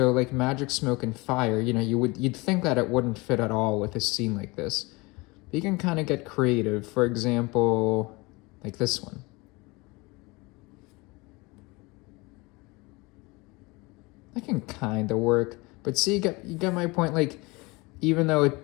like magic, smoke, and fire, you know, you'd think that it wouldn't fit at all with a scene like this. But you can kind of get creative. For example, like this one. That can kind of work. But see, you get my point. Like, even though it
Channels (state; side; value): quieter; right; 24.7 dB